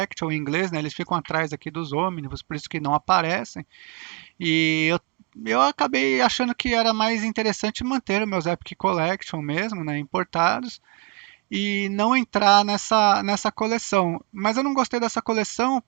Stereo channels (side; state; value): left; quieter; 25.8 dB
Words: em inglês, né? Eles ficam atrás aqui dos ônibus, por isso que não aparecem. E eu acabei achando que era mais interessante manter os meus Epic Collection mesmo, né, importados, e não entrar nessa coleção. Mas eu não gostei dessa coleção